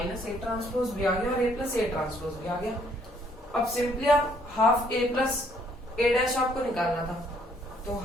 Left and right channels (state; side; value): normal; both; correlation 0.66